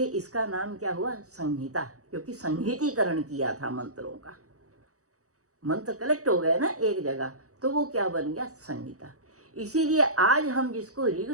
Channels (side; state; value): left; late; 0.65 ms